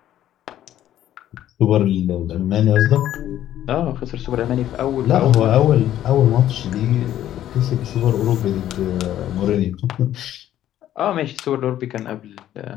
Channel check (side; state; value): right; quieter; 12.1 dB